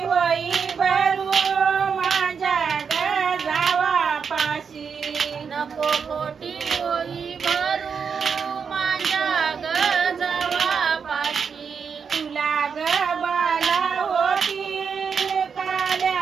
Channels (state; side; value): quieter; left; 6.3 dB